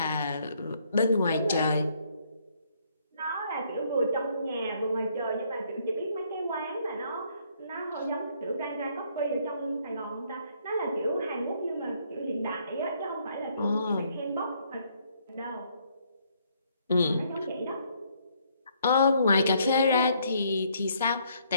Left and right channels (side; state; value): both; inverted; correlation -0.68